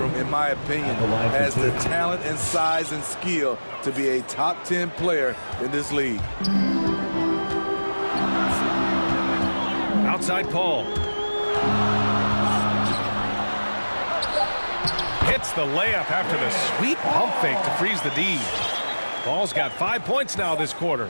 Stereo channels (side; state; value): both; inverted; correlation -1.00